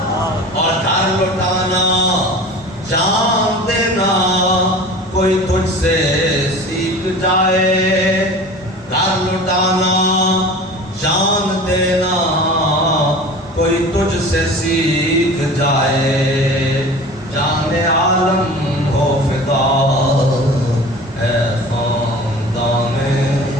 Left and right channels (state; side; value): normal; both; correlation 0.39